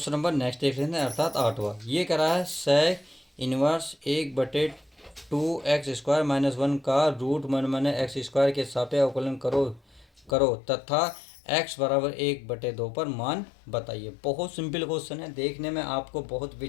नंबर नेक्स्ट देख लेते हैं, अर्थात 8वां। ये कह रहा है सेक इनवर्स 1 बटे 2x स्क्वायर माइनस 1 का रूट 1 माइनस एक्स स्क्वायर के सापेक्ष अवकलन करो तथा x बराबर 1/2 पर मान बताइए। बहुत सिंपल क्वेश्चन है, देखने में आपको बहुत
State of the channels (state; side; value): drops out; right; at 10.4 s